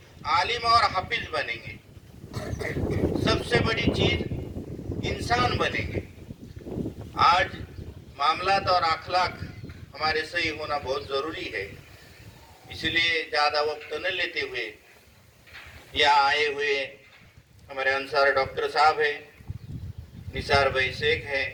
आलिम और हाफिज बनेंगे। सबसे बड़ी चीज इंसान बनेंगे। आज मामलात और अखलाक हमारे सही होना बहुत ज़रूरी है। इसलिए ज़्यादा वक्त न लेते हुए यहाँ आए हुए हमारे अंसार डॉक्टर साहब है, निसार भाई शेख है,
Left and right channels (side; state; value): both; identical; correlation 1.00